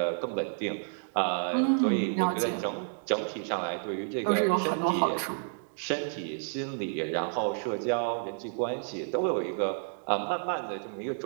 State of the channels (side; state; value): left; silent; digital silence